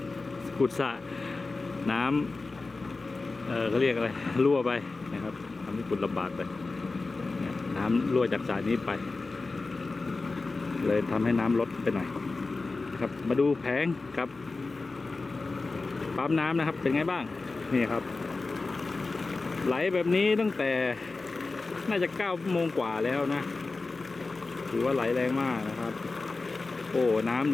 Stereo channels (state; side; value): quieter; right; 3.7 dB